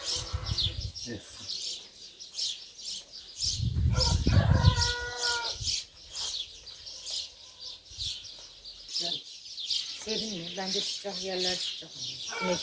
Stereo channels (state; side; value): identical; both; correlation 1.00